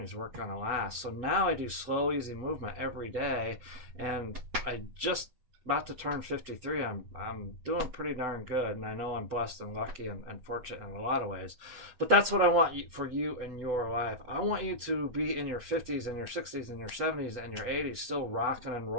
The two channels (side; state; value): left; late; 8.0 ms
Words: weren't going to last. So now I do slow, easy movement every day, and I just about to turn 53. I'm doing pretty darn good, and I know I'm blessed and lucky and fortunate in a lot of ways. But that's what I want for you in your life. I want you to be in your 50s and your 60s and your 70s and your 80s still rocking and